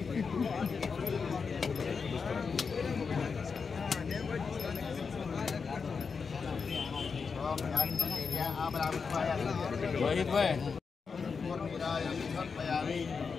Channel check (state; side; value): quieter; right; 5.4 dB